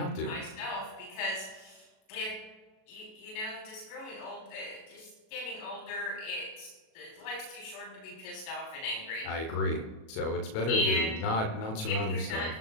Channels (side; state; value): right; late; 37 ms